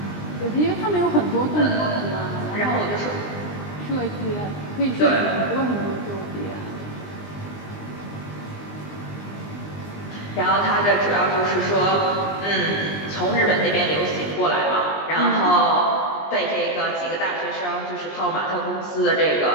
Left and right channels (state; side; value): late; right; 20 ms